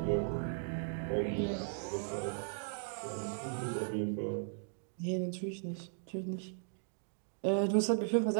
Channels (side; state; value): left; silent; digital silence